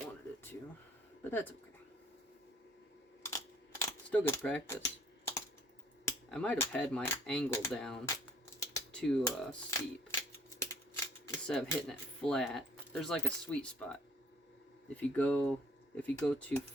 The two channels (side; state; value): both; normal; correlation 0.58